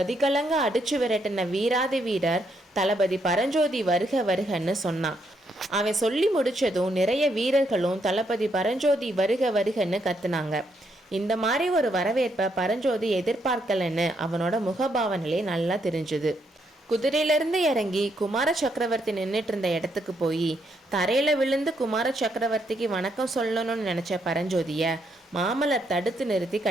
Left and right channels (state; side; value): normal; both; correlation 0.76